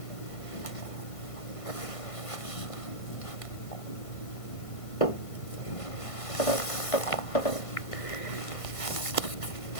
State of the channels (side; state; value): right; late; 1.5 ms